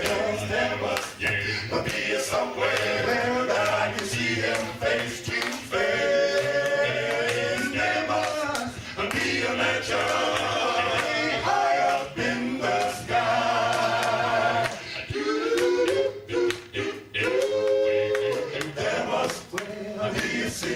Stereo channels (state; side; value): identical; both; correlation 1.00